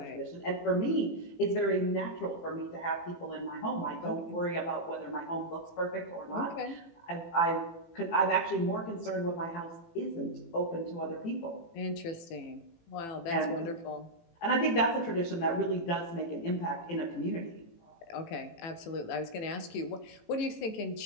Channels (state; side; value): late; right; 18 ms